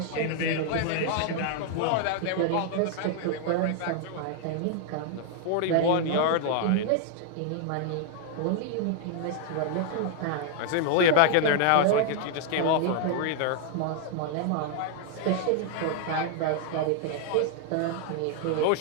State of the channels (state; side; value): different; both; correlation 0.00